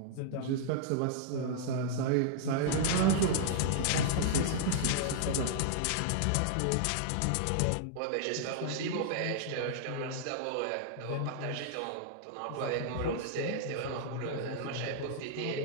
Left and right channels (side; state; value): both; different; correlation -0.01